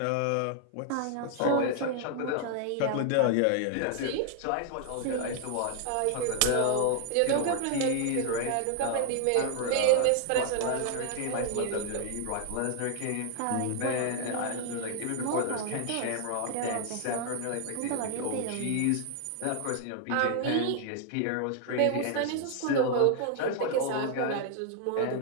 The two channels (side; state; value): both; different; correlation 0.00